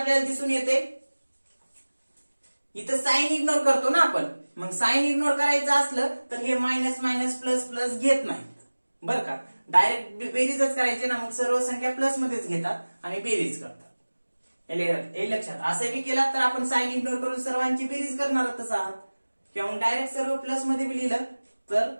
दिसून येते, इथं साइन इग्नोर करतो ना आपण. मग साइन इग्नोर करायचं असलं तर हे मायनस मायनस प्लस प्लस घेत नाहीत बरं का, डायरेक्ट बेरीजच करायचे ना. मग सर्व संख्या प्लस मध्येच घेतात आणि बेरीज करतात. हे लक्षात. असं बी केलात तर आपण साइन इग्नोर करून सर्वांची बेरीज करणारच आहात, किंवा मग डायरेक्ट सर्व प्लस मध्ये बी लिहिलं तर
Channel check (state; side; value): inverted; both; correlation -1.00